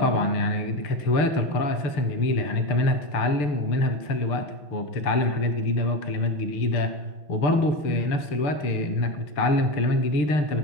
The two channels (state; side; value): late; right; 6.7 ms